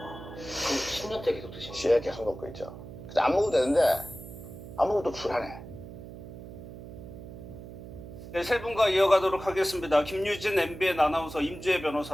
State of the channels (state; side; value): noise; right; hum, 13 dB below the sound